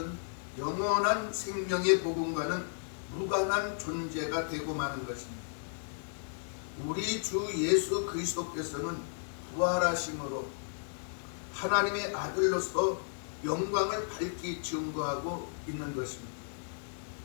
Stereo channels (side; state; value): right; silent; digital silence